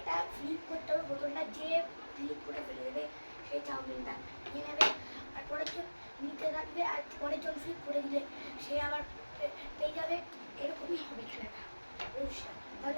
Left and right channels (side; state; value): both; inverted; correlation -1.00